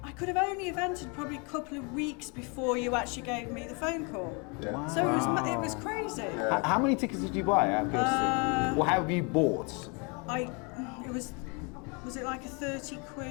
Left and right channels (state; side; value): quieter; right; 32.6 dB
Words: I could have only entered probably a couple of weeks before you actually gave me the phone call. Yeah. Wow. So it was crazy. Yeah. How many tickets did you buy out of curiosity? Or have you bought? Was it like a £30,